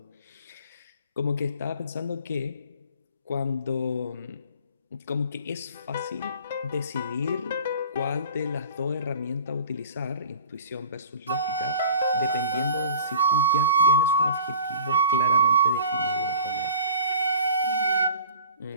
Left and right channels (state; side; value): inverted; both; correlation -0.45